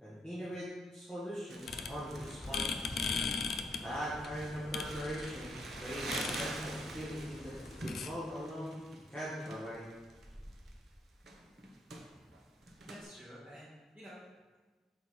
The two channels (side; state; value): both; normal; correlation 0.73